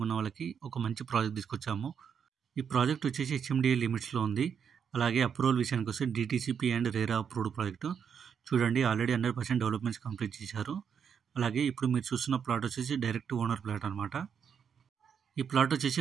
ఉన్న వాళ్ళకి ఒక మంచి ప్రాజెక్ట్ తీసుకొచ్చాము. ఈ ప్రాజెక్ట్ వచ్చేసి హెచ్ఎండిఏ లిమిట్స్లో ఉంది. అలాగే అప్రూవల్ విషయానికి వస్తే DTCP and RERA approved project. చూడండి, ఆల్రెడీ 100% డెవలప్మెంట్స్ కంప్లీట్ చేశారు. అలాగే ఇప్పుడు మీరు చూస్తున్న ప్లాట్ వచ్చేసి డైరెక్ట్ ఓనర్ ప్లాట్ అనమాట. ఈ ప్లాట్ వచ్చేసి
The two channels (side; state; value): left; quieter; 7.3 dB